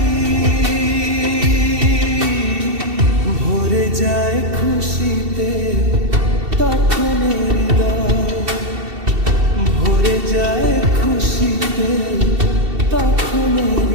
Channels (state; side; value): late; left; 2.7 ms